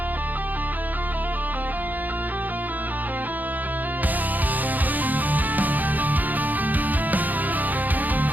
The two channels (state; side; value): late; left; 0.083 ms